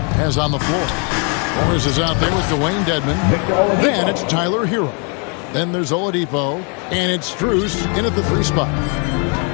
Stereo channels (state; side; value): quieter; right; 36.9 dB